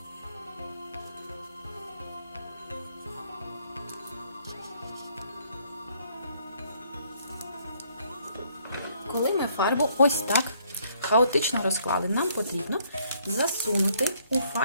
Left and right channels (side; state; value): both; inverted; correlation -0.66